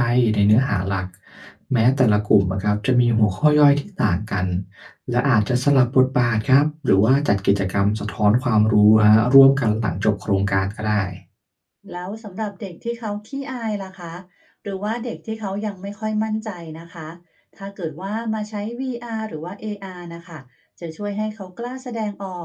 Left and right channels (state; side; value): identical; both; correlation 1.00